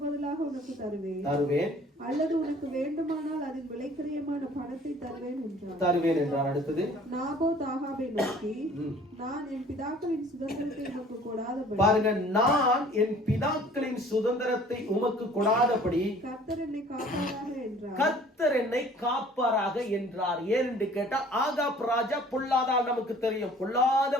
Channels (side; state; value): both; normal; correlation 0.52